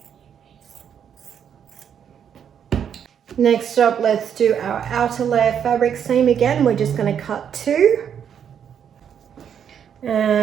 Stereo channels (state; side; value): quieter; left; 8.3 dB